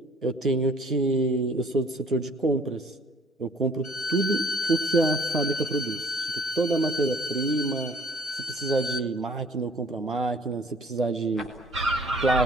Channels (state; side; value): normal; both; correlation 0.55